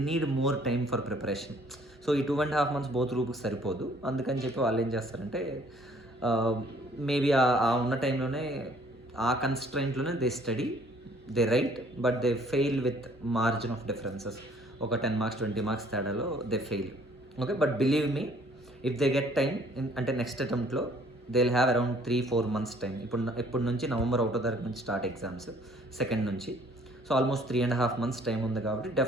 need more time for preparation. So ఈ 2.5 months బోత్ గ్రూప్కి సరిపోదు. అందుకని చెప్పి వాళ్ళు ఏం చేస్తారంటే మేబీ ఆ ఉన్న టైంలోనే ఆ కన్స్ట్రైంట్లోనే they study, they right, but they fail with margin of differences. ఒక 10 marks 20 marks తేడాలో they fail. Okay, but believe me, if they get time అంటే నెక్స్ట్ అటెంప్ట్లో they will have around 3-4 months టైం. ఇప్పుడు నుంచి November 1వ తారీఖు నుంచి స్టార్ట్ ఎగ్జామ్స్, 2nd నుంచి. సో ఆల్మోస్ట్ 3.5 months టైం ఉంది కాబట్టి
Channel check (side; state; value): both; normal; correlation 0.59